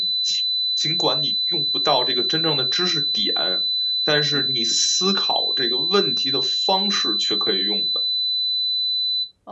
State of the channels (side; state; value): both; identical; correlation 1.00